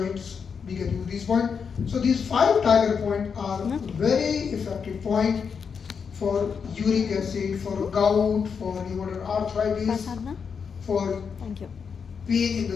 We can use these points. So these 5 tiger points are very effective point for uric acid, for gout, for rheumatoid arthritis, ಪ್ರಸಾದ್ನ for thank you pain in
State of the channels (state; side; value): quieter; right; 6.2 dB